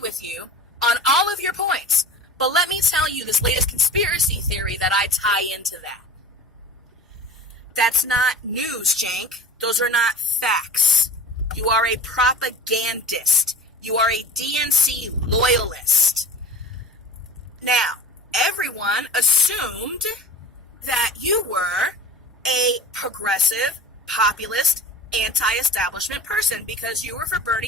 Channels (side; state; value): both; normal; correlation 0.36